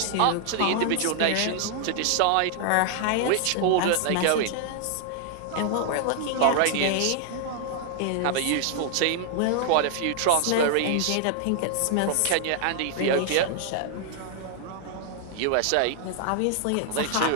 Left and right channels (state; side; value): different; both; correlation 0.00